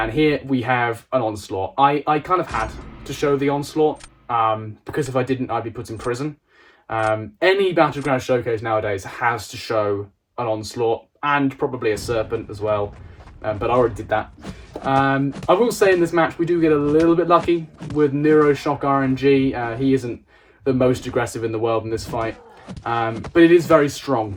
here we have an Onslaught. I kind of had to show the Onslaught, because if I didn't, I'd be put in prison. Any Battlegrounds showcase nowadays has to show an Onslaught, and probably a Serpent as well. But I already did that. I will say in this match we do get a little bit lucky with Neuroshock RNG. He isn't the most aggressive in the world in this fight, but it is very strong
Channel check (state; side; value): identical; both; correlation 1.00